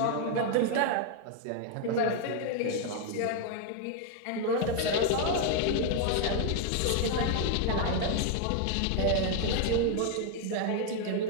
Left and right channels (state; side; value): different; both; correlation 0.00